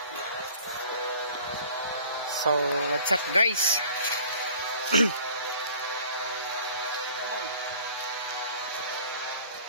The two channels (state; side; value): inverted; both; correlation -0.49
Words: So, what's up guys?